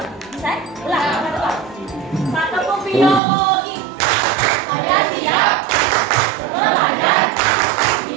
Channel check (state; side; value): drops out; left; at 3.2 s